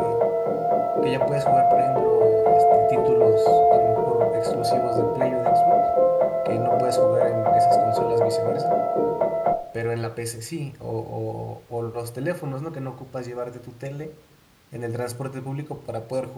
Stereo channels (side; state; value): both; identical; correlation 1.00